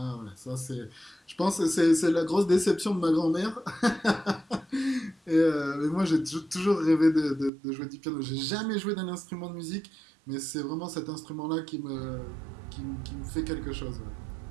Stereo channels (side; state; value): left; drops out; at 7.5 s